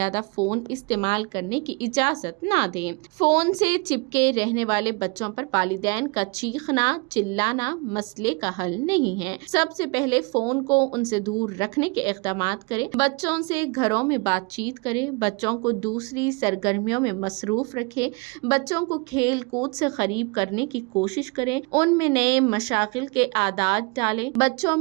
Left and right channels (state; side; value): quieter; left; 30.5 dB